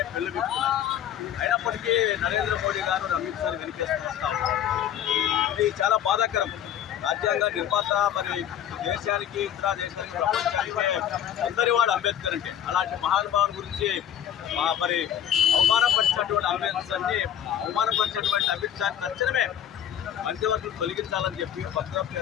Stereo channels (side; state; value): right; quieter; 10.1 dB